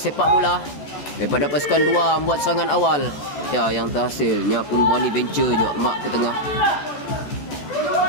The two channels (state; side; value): late; right; 14 ms